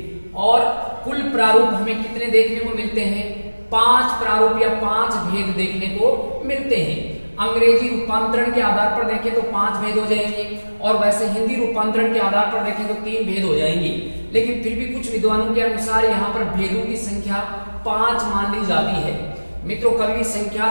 और कुल प्रारूप हमें कितने देखने को मिलते हैं? 5 प्रारूप या 5 भेद देखने को मिलते हैं। अंग्रेजी रूपांतरण के आधार पर देखें तो 5 भेद हो जाएंगे, और वैसे हिंदी रूपांतरण के आधार पर देखें तो 3 भेद हो जाएंगे। लेकिन फिर भी कुछ विद्वानों के अनुसार यहाँ पर भेदों की संख्या 5 मान ली जाती है। मित्रों कभी भी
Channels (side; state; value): both; inverted; correlation -1.00